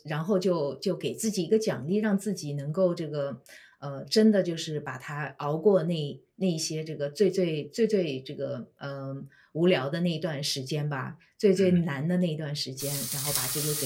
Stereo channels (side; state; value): both; identical; correlation 1.00